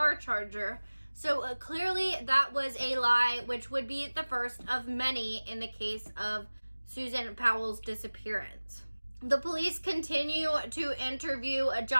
charger. So clearly that was a lie, which would be the first of many in the case of Susan Powell's disappearance. The police continue to interview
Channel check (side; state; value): both; inverted; correlation -1.00